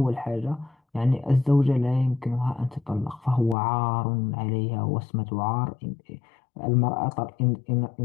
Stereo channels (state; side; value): drops out; right; at 3.6 s